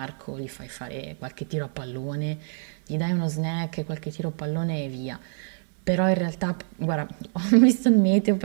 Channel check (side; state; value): left; silent; 61 dB below the other